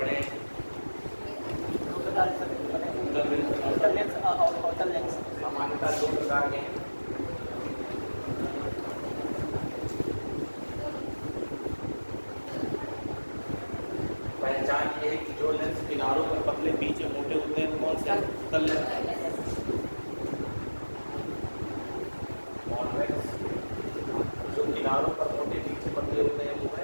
सामान्यतः 2 प्रकार के हैं। पहचान ये है कि जो लेंस किनारों पर पतले बीच में मोटे होते हैं कौन से उत्तल लेंस, कॉन्वेक्स। जो किनारों पर मोटे बीच में पतले होते हैं वो है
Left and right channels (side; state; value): both; inverted; correlation -1.00